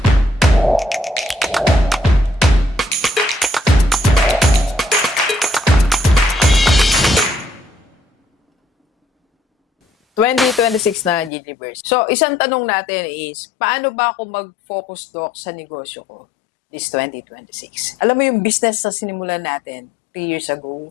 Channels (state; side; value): drops out; right; at 11.3 s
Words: ...2026 na Giniverse. So, isang tanong natin is, paano ba ako mag-focus, Doc, sa negosyo ko this 2026? Alam mo yung business na sinimulan natin 3 years ago,